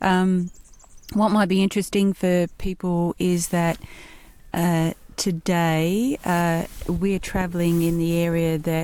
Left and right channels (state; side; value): identical; both; correlation 1.00